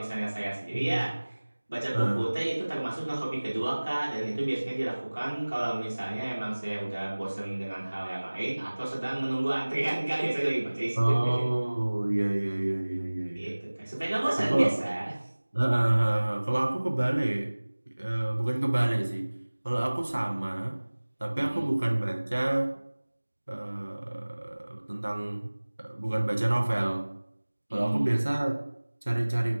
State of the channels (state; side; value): inverted; both; correlation -1.00